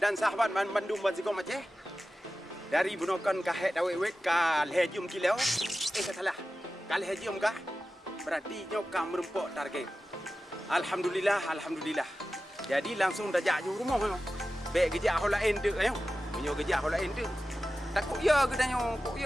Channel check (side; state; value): both; normal; correlation 0.94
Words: dan sahabat Bandung Bazikong Aceh. Dari bunokan kahet dawek ka lehjum kilau. Salah. Ka lehjum kah? Berarti nyokam merempok target. Alhamdulillah. Jadi langsung dajak ju rumah yo. Bek gejak hola ende ayo. Menyo gejak hola ende. Takut ya gedanyo, kok